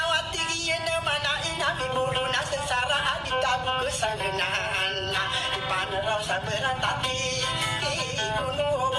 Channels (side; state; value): both; identical; correlation 1.00